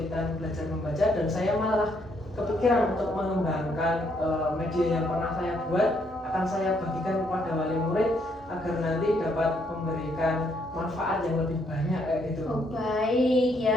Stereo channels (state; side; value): normal; both; correlation 0.72